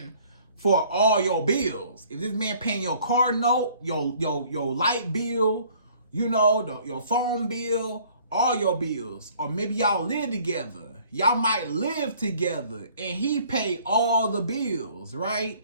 for all your bills. If this man paying your car note, your light bill, your phone bill, all your bills. Or maybe y'all live together. Y'all might live together and he pay all the bills, right?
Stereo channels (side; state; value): both; inverted; correlation -0.56